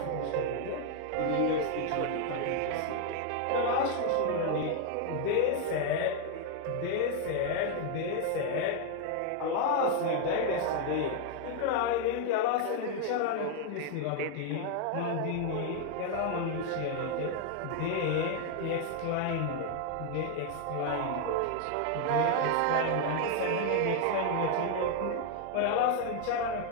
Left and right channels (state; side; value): different; both; correlation 0.00